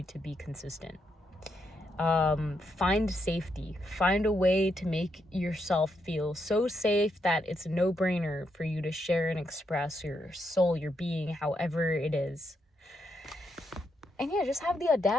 to be consistent. Find safety, find a way to make yourself feel so safe that it's a no-brainer for you to share and express your soul, your being, however it is. And yeah, just have the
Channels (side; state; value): both; normal; correlation 0.80